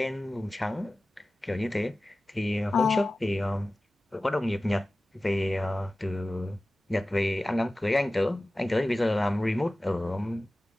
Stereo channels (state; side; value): normal; both; correlation 0.96